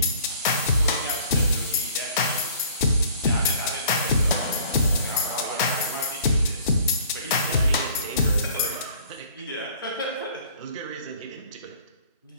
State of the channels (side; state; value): both; inverted; correlation -0.53